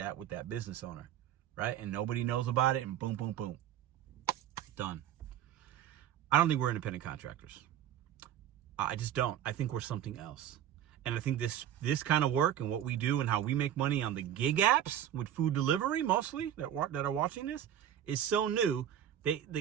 with that business owner, right? And nobody knows about it, and boom, boom, boom. Done. I don't think we're independent contractors. I just don't. I think we're something else. And I think this kind of work and what we do and how we make money on the gig apps with food delivery, mostly, that are watching this, is so new.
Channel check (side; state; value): left; quieter; 10.5 dB